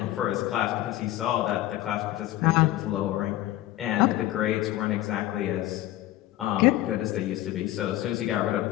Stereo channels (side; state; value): right; quieter; 15.1 dB